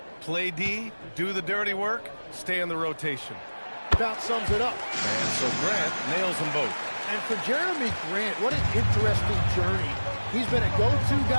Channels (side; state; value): both; inverted; correlation -1.00